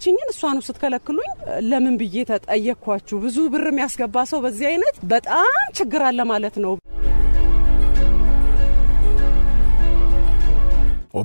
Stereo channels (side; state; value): both; inverted; correlation -1.00